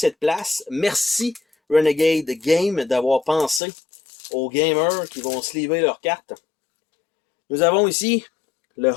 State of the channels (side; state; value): right; drops out; at 3.6 s